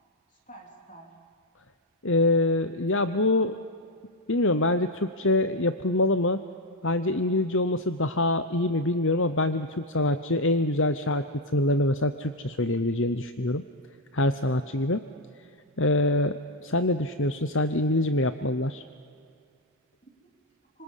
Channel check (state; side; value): normal; both; correlation 0.05